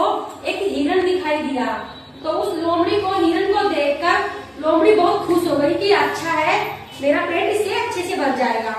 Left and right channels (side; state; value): both; identical; correlation 1.00